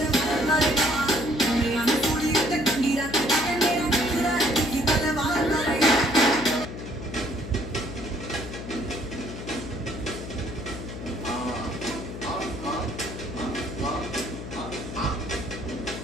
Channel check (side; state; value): left; noise; hum, 9 dB below the sound